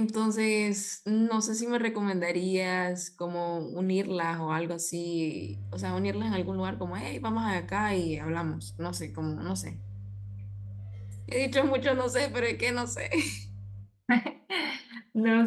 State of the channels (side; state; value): both; identical; correlation 1.00